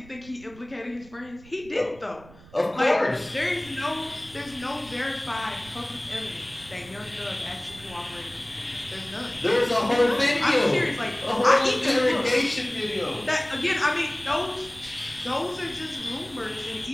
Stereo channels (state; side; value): noise; right; rumble, 22 dB below the sound